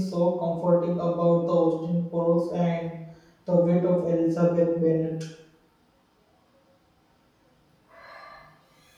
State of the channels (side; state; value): both; identical; correlation 1.00